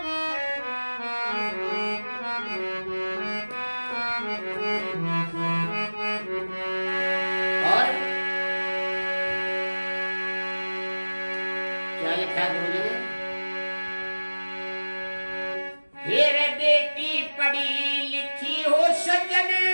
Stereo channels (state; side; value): inverted; both; correlation -1.00